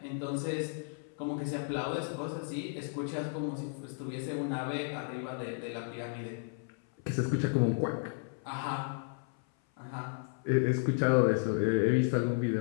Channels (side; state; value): right; silent; 55 dB below the other